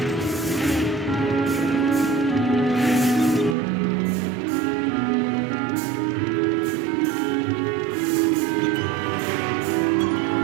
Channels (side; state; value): left; drops out; at 3.6 s